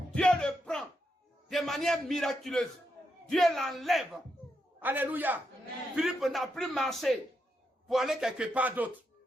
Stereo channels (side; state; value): both; normal; correlation 0.83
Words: Dieu le prend de manière miraculeuse. Dieu l'enlève. Alléluia. Amen. Philippe n'a plus marché pour aller quelque part d'autre.